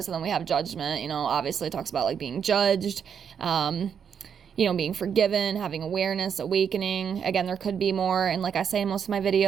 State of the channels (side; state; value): left; quieter; 7.5 dB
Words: And then we have judgment, you know, obviously it talks about like being judged, you know, being forgiven, having awareness, awakening. Again, there could be more. And like I say in most of my